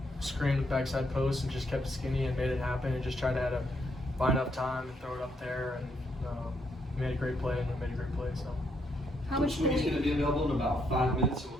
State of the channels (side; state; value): both; normal; correlation 0.75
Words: screen with backside post, and just kept it skinny and made it happen, and just tried to buy enough time and throw it up there, and made a great play, and made a great play. So. How much Coach Sweeney's going to be available in about 5 minutes, so